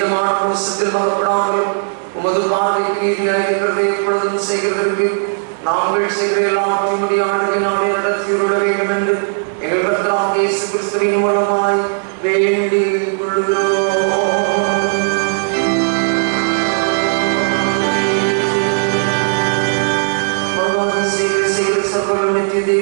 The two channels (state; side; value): silent; left; 69 dB below the other